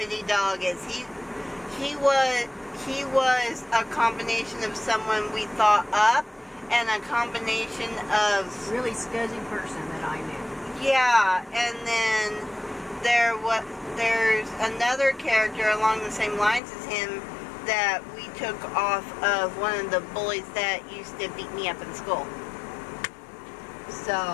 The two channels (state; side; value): drops out; right; at 16.6 s